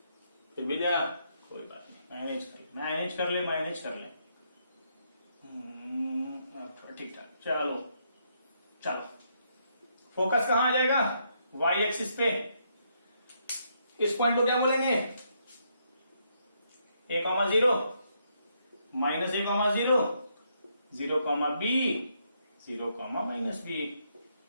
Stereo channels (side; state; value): both; inverted; correlation -0.75